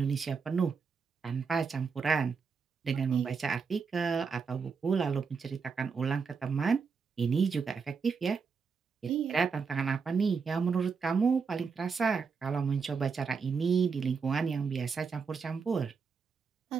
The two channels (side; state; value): left; quieter; 5.5 dB